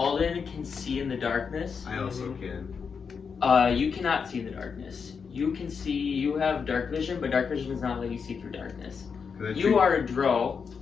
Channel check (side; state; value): right; quieter; 5.9 dB